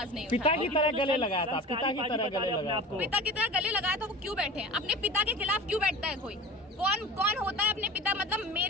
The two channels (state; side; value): normal; both; correlation 0.35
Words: नहीं। पिता की तरह गले लगाया था, पिता की तरह गले लगाया था, पिता की तरह गले लगाया था। वो क्यों बैठे हैं? अपने पिता के खिलाफ क्यों बैठता है कोई? कौन होता है अपने पिता? मतलब